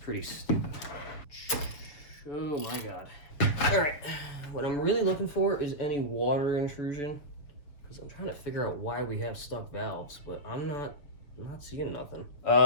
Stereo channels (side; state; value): right; late; 6.7 ms